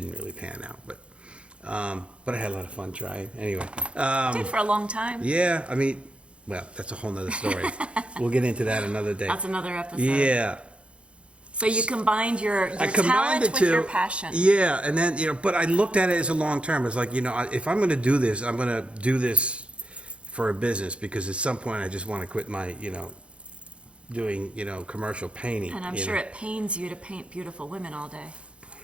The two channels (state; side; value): late; left; 0.059 ms